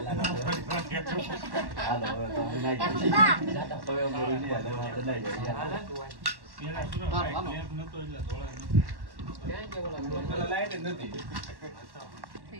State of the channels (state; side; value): late; left; 1.1 ms